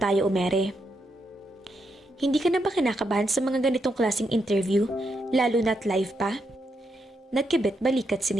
umere. Hindi ka na ba kinakabahan sa mga ganitong klaseng interview, lalo na't live pa? Nagkibit balikat si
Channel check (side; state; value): both; normal; correlation 0.81